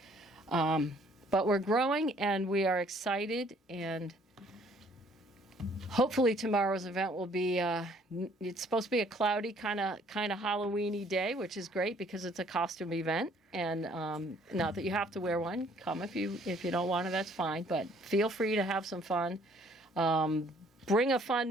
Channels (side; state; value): both; normal; correlation 0.60